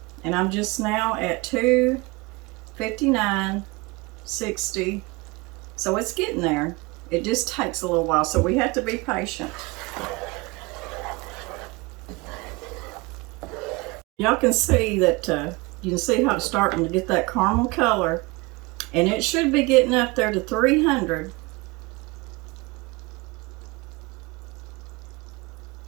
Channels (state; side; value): quieter; left; 24.8 dB